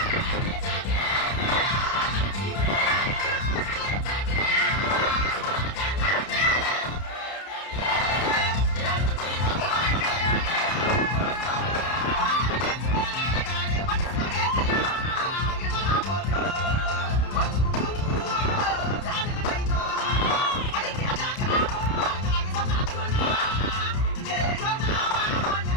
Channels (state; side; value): late; right; 31 ms